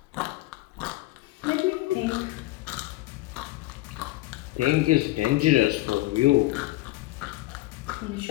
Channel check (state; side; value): quieter; right; 18.7 dB